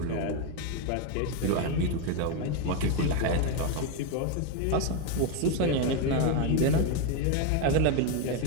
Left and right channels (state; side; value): different; both; correlation 0.02